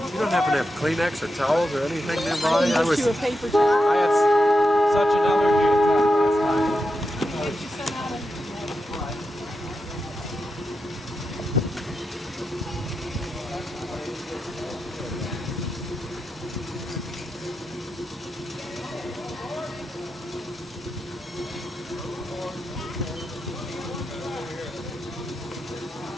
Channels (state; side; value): normal; both; correlation 0.87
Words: don't happen to have Kleenex or towels or anything nearby? I was. you a paper towel. I had such an allergy attack last time. Get you some out of